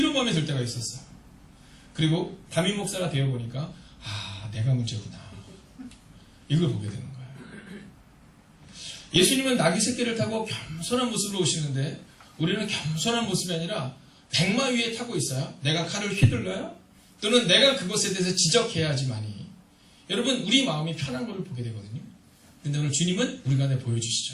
마음이 들 때가 있었어요. 그리고 담임 목사가 되어보니까 내가 문제구나. 이걸 보게 되는 거예요. 예수님은 나귀 새끼를 타고 겸손한 모습으로 오시는데 우리는 겸손한 모습이 아니라 백마 위에 타고 있어요. 내가 칼을 휘둘러요? 또는 내가 그것에 대해서 지적해야지만이 여러분, 우리 마음이 편한 것을 보게 되거든요. 근데 오늘 주님은 우리 가운데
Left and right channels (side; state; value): both; identical; correlation 1.00